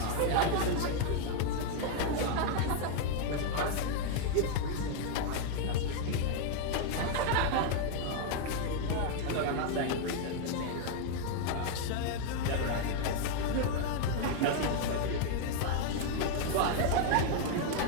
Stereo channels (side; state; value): both; different; correlation 0.00